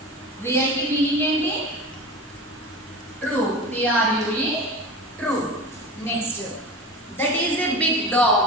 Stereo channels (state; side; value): normal; both; correlation 0.31